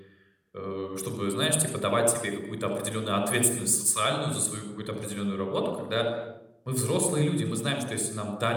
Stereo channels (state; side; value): identical; both; correlation 1.00